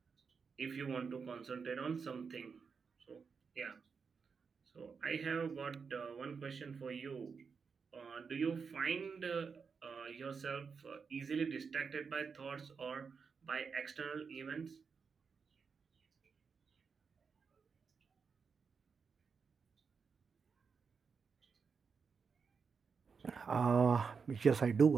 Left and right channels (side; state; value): left; quieter; 5.6 dB